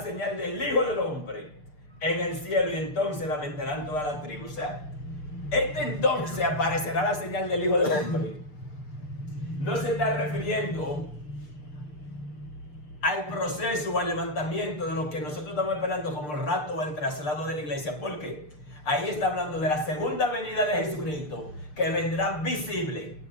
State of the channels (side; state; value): right; late; 6.6 ms